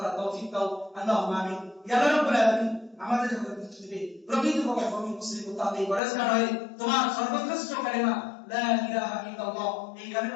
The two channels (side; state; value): right; drops out; at 6.0 s